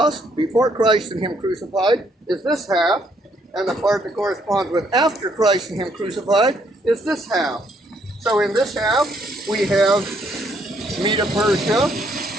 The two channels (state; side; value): normal; both; correlation 0.70